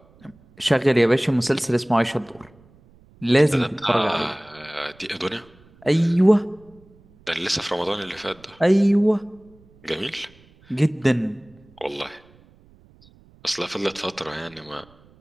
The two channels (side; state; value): right; noise; rumble, 28 dB below the sound